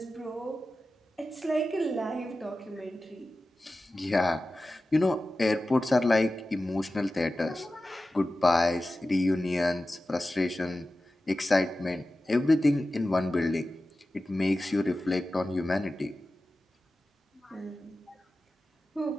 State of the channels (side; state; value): both; normal; correlation 0.94